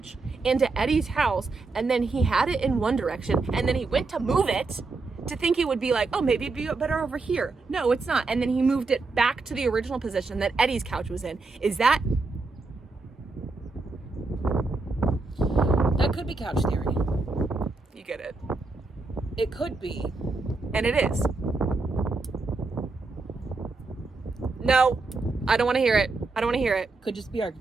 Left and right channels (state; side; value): quieter; left; 3.7 dB